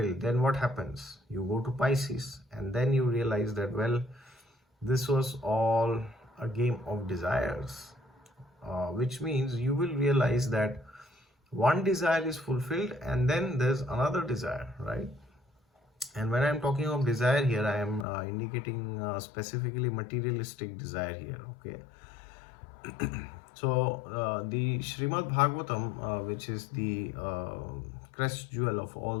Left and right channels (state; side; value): drops out; right; at 18.1 s